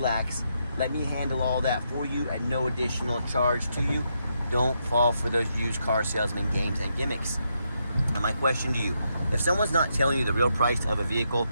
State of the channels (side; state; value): both; inverted; correlation -0.80